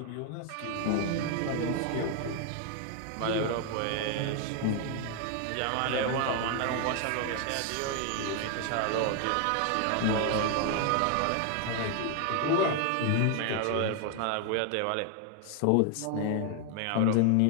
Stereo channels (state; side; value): different; both; correlation 0.00